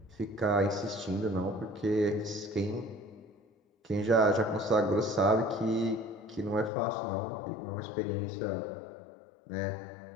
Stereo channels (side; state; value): right; drops out; at 6.7 s